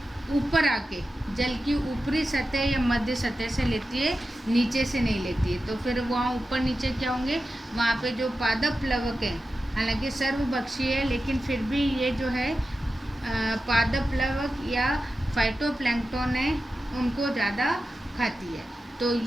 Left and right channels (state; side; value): normal; both; correlation 0.92